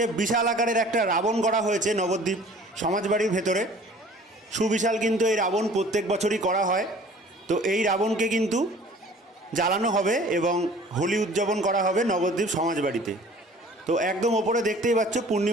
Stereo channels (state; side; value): normal; both; correlation 0.49